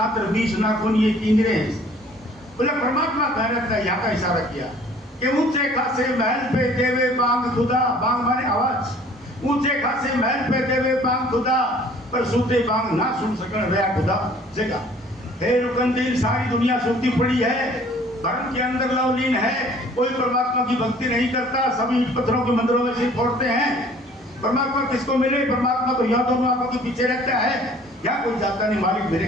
और 20 नाखून ये किंगरे हैं। बोले परमात्मा कह रहता है, यहाँ का इशारा किया कि ऊंचे खासे महल पे देवे बांग खुदा। बांग माने आवाज। ऊंचे खासे महल पे देवे बांग खुदा, पर सूते बांग ना सुन सकन रहा खुदा जगह। हे रुकनुद्दीन, सारी दुनिया सूती पड़ी है, भरम के अंदर लवलीन है, कोई परमात्मा की भक्ति नहीं करता, सभी पत्थरों के मंदिरों में सिर फोड़ते हैं। परमात्मा किसको मिले? परमात्मा तो यहाँ दोनों आंखों के पीछे रहता है, यहाँ कोई जाता नहीं, मालिक मेरे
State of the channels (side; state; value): both; normal; correlation 0.53